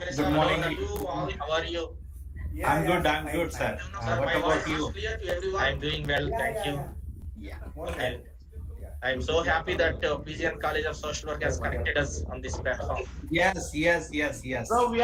morning. How are you? I'm good, fine. sir. Sir, What my about voice you? is clear to everyone? I'm doing well, thank you. Yeah. More Okay. than. Yeah. I'm so happy that PGN College of Social Work has connected us on this platform. Yes. So we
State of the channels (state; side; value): identical; both; correlation 1.00